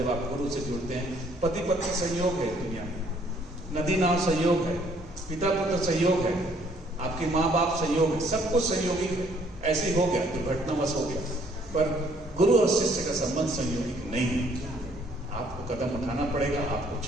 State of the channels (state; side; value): normal; both; correlation 0.63